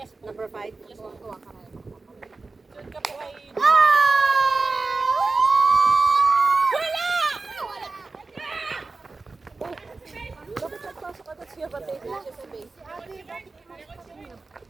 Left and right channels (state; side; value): quieter; left; 3.7 dB